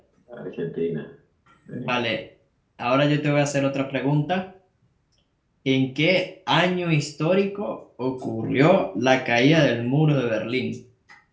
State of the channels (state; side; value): identical; both; correlation 1.00